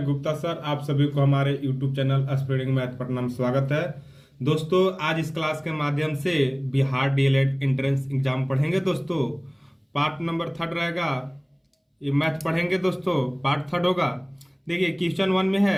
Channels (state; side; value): identical; both; correlation 1.00